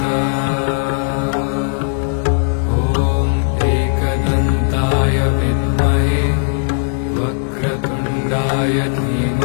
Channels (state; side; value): silent; right; digital silence